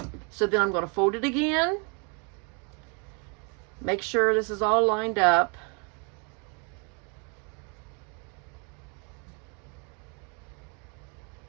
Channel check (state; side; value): quieter; left; 35.0 dB